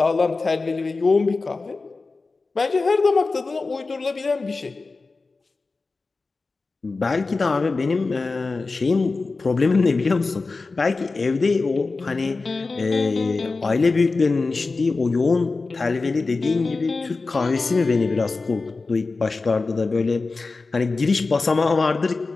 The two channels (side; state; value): right; quieter; 3.8 dB